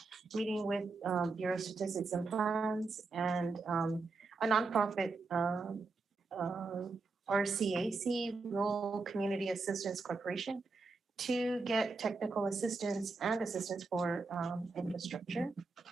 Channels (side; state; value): left; quieter; 3.9 dB